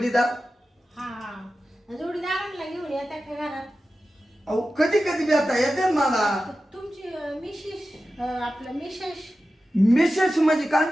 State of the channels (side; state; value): both; normal; correlation 0.93